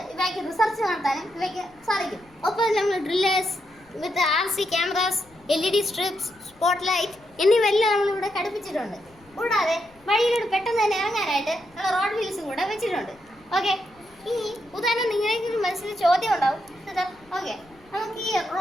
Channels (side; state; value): left; noise; rumble, 29 dB below the sound